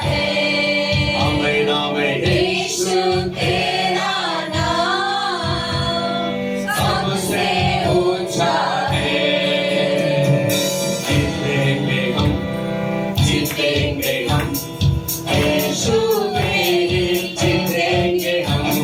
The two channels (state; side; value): identical; both; correlation 1.00